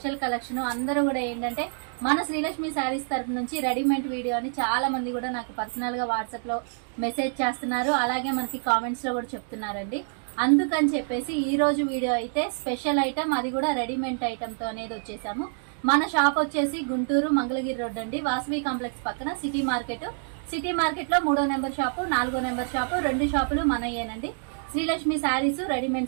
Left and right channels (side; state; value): left; silent; digital silence